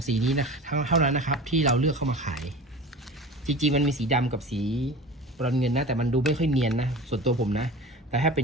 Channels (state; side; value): normal; both; correlation 0.35